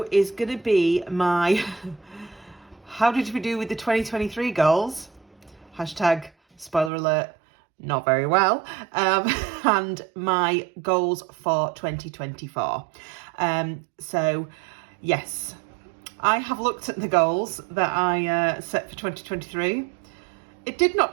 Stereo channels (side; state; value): left; drops out; at 6.9 s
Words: is going to be my how did we do with the 2023 goals? Hashtag spoiler alert, not very well. And my goals for 2024. So yes, I have looked at the goals that I set for 2023. It did